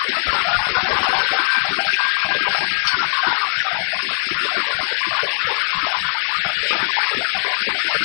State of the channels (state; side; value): silent; right; 66 dB below the other